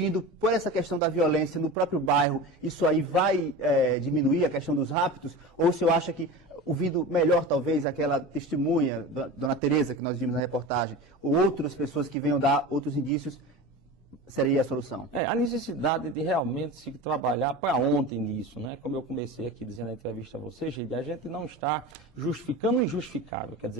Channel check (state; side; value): normal; both; correlation 0.30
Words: por essa questão da violência no próprio bairro, isso aí vai diminuir a questão dos raptos? Ou o senhor acha que, ouvindo melhor talvez aquela testemunha, Dona Tereza, que nós vimos na reportagem, ou outras pessoas que venham dar outros indícios, seria a solução? A necessidade de realmente se trabalhar para ontem nisso, né? Como eu comecei aqui dizendo na entrevista a você, Geide, a gente não está justificando o injustificável. Quer